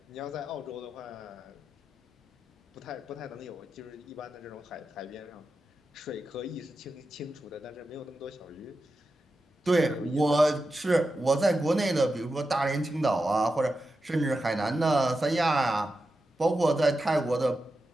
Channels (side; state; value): both; normal; correlation 0.90